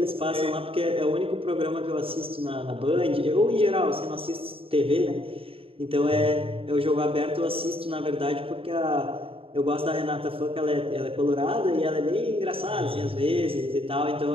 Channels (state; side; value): late; left; 0.27 ms